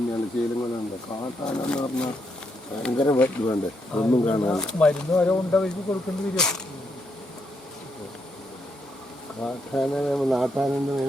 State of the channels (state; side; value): normal; both; correlation 0.78